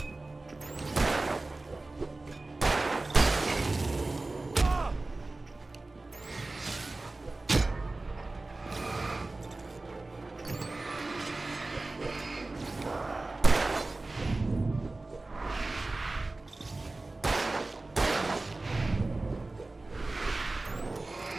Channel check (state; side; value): quieter; left; 3.1 dB